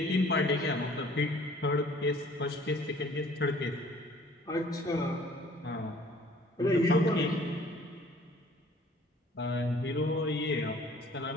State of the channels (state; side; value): normal; both; correlation 0.54